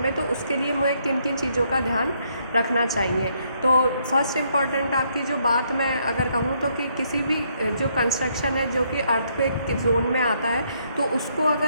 तो उसके लिए मुझे किन किन चीज़ों का ध्यान रखना चाहिए। तो फर्स्ट इम्पॉर्टेंट आपकी जो बात मैं अगर कहूँ तो कि किसी भी जो कंस्ट्रक्शन है जो कि अर्थक्वेक के जोन में आता है तो उसको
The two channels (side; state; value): both; inverted; correlation -0.72